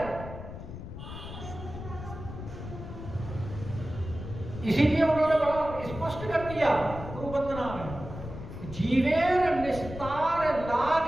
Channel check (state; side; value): noise; left; rumble, 10 dB below the sound